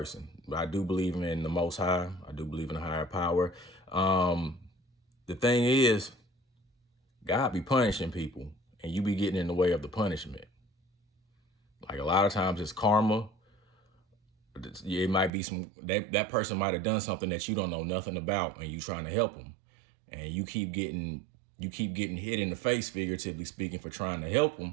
but I do believe in the Most High. I do believe in a higher power. The thing is, God be punishing people, and you be getting in the way of the punishment. Like a lot of times it's karma. It might be that person might have done something that you don't know nothing about, and you trying to help them, and you keep getting hit in the face, figuratively speaking, for trying to help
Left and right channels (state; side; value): drops out; left; at 15.3 s